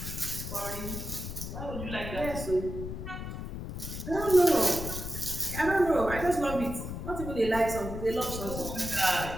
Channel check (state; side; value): noise; left; rumble, 7 dB below the sound